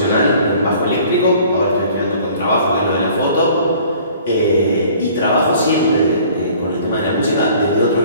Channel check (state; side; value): inverted; both; correlation -0.53